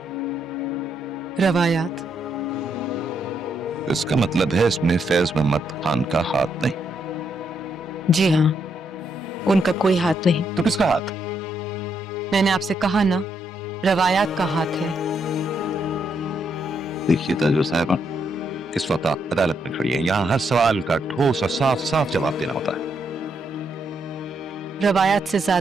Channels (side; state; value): both; normal; correlation 0.77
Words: रवायात। इसका मतलब है इसमें फैज मोहम्मद खान का हाथ नहीं। जी हाँ, उनका कोई हाथ नहीं। तो किसका हाथ? मैंने आपसे कहा ना, रवायात का हाथ है। देखिए ताजवर साहब, इस वक्त आप अदालत में खड़ी है, यहाँ हर सवाल का ठोस और साफ साफ जवाब देना होता है। रवायात से